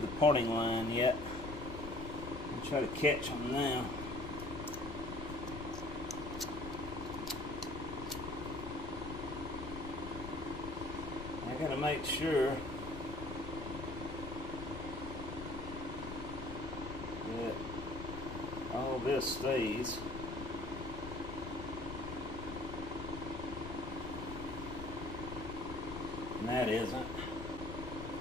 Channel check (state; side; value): noise; left; rumble, 9 dB below the sound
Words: parting line yet. I'll try to catch them now. I gotta make sure that all this stays. And that isn't.